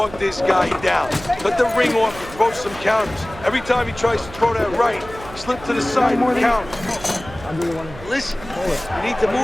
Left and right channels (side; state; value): right; noise; hum, 16 dB below the sound